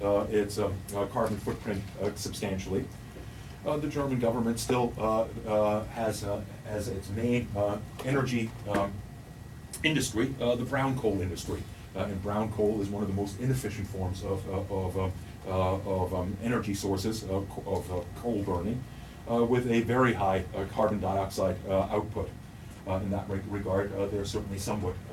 carbon footprint substantially. The German government still has as its main energy industry the brown coal industry, and brown coal is one of the most inefficient forms of energy sources of coal burning, with a very high carbon dioxide output. In that regard, they're certainly somewhat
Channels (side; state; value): both; identical; correlation 1.00